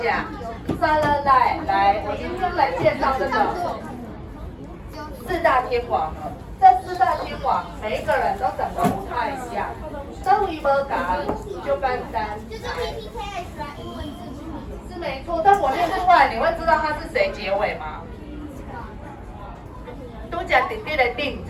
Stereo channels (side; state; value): both; identical; correlation 1.00